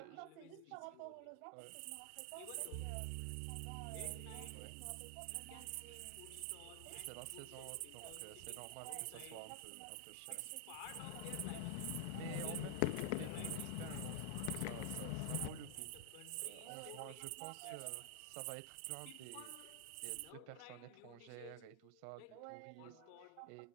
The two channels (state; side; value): different; both; correlation 0.00